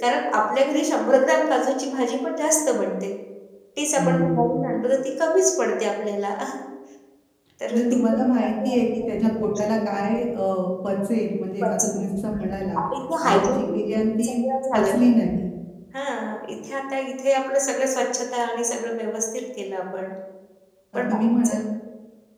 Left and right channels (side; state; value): both; identical; correlation 1.00